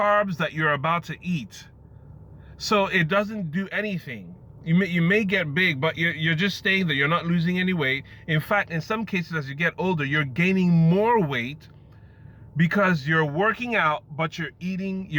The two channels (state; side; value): identical; both; correlation 1.00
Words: that you're about to eat. So it doesn't do anything. You may get big, but you're just staying there. You're not losing any weight. In fact, in some cases, as you get older, you're gaining more weight because you're working out, but you're